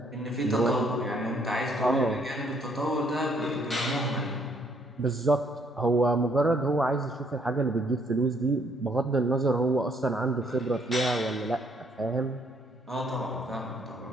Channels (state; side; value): normal; both; correlation 0.67